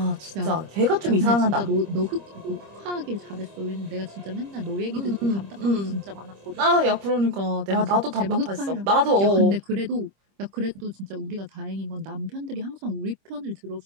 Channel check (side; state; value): left; late; 25 ms